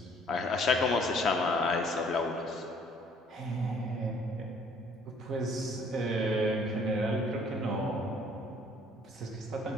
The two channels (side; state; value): both; normal; correlation 0.59